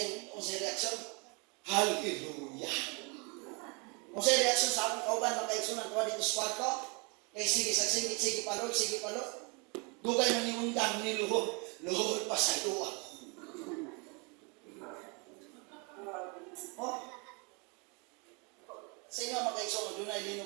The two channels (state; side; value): quieter; left; 32.0 dB